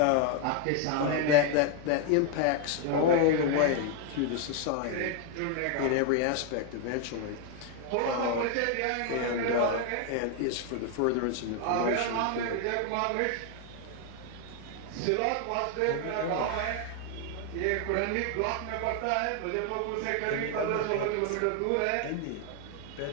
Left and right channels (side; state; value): both; different; correlation 0.01